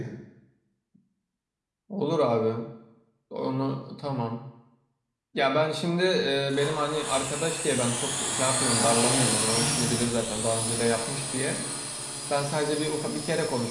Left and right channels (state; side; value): identical; both; correlation 1.00